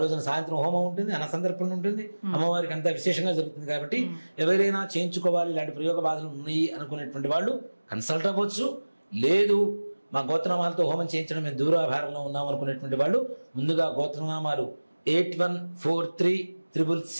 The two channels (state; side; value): inverted; both; correlation -1.00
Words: రోజున సాయంత్రం హోమం ఉంటుంది, అన్న సందర్భం ఉంటుంది, అమ్మవారికి అంతా విశేషంగా జరుగుతుంది. కాబట్టి ఎవరైనా చేయించుకోవాలి, ఇలాంటి ప్రయోగ బాధలు ఉన్నాయి అనుకునేటువంటి వాళ్ళు కన్సల్ట్ అవ్వచ్చు. లేదు మా గోత్రనామాలతో హోమం చేయించడం మేము దూరాభారంలో ఉన్నాం అనుకునేటువంటి వాళ్ళు ముందుగా గోత్రనామాలు